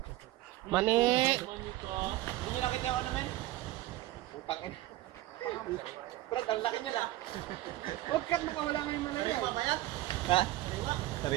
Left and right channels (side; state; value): left; quieter; 16.3 dB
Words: Mani! Hindi nyo nakita yung ano, men? Putang ina. Brad, ang laki nyo na. Huwag ka nakawala ngayon malaya. Sariwa ba yan? Ha?